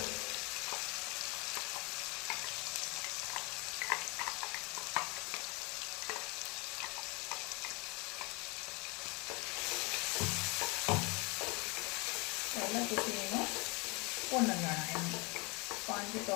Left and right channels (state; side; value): quieter; right; 28.0 dB